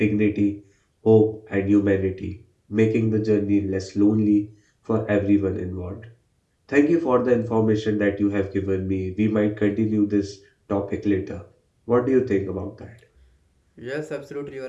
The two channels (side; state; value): both; identical; correlation 1.00